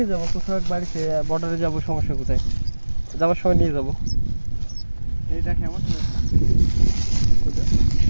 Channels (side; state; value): both; inverted; correlation -1.00